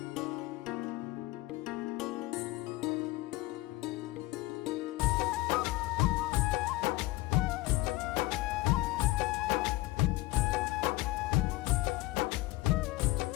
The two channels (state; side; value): quieter; right; 19.3 dB